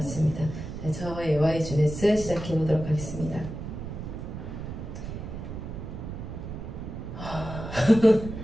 네, 저의 YGS 시작해보도록 하겠습니다.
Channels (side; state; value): right; noise; rumble, 8 dB below the sound